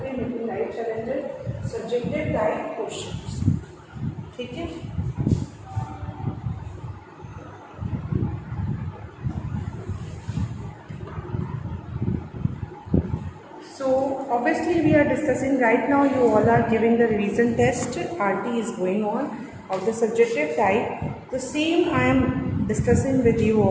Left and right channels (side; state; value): both; identical; correlation 1.00